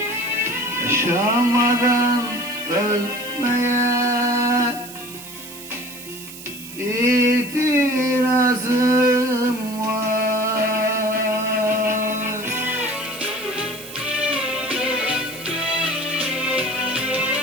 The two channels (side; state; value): right; noise; hiss, 14 dB below the sound